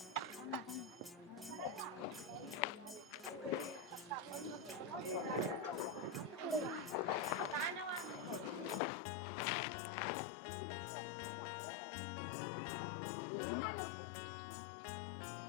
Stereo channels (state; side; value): drops out; right; at 8.8 s